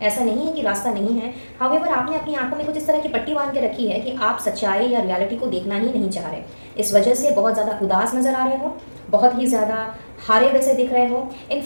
ऐसा नहीं है कि रास्ता नहीं है। हाउएवर आपने अपनी आंखों में कुछ इस तरह की पट्टी बांध के रखी है कि आप सच्चाई या रियलिटी को देखना ही नहीं चाह रहे। इस वजह से बहुत ज़्यादा उदास नज़र आ रहे हो, बहुत ही ज़्यादा हारे वैसे दिख रहे हो।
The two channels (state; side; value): inverted; both; correlation -1.00